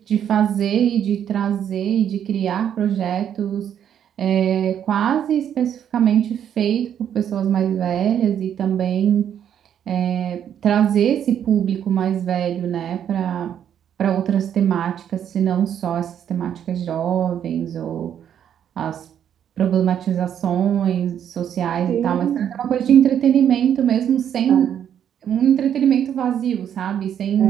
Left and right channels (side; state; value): left; quieter; 9.3 dB